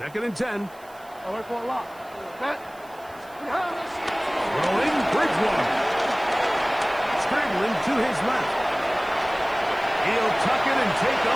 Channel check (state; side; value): noise; right; hiss, 26 dB below the sound